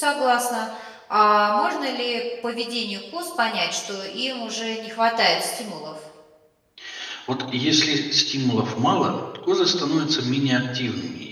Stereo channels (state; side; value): identical; both; correlation 1.00